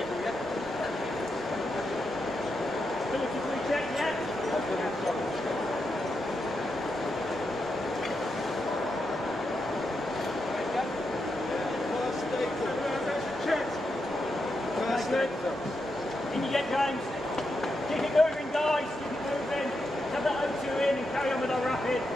Ability to recheck yet? In you get, James. Keep it moving, guys. Keep it moving. Have that O2 in and carry on with our rapid.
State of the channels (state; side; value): normal; both; correlation 0.85